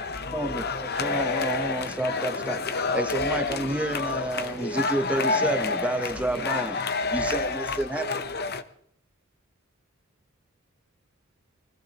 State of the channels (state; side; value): normal; both; correlation 0.17